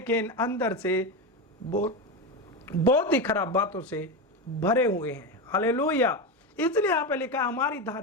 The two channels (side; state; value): both; normal; correlation 0.16